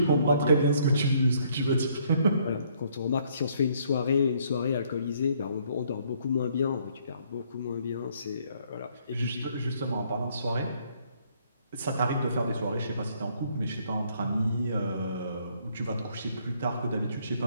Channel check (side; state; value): both; inverted; correlation -0.66